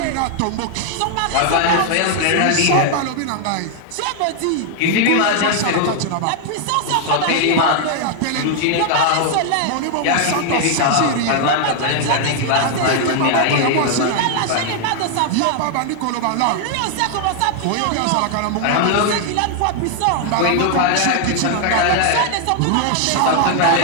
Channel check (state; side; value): different; both; correlation 0.00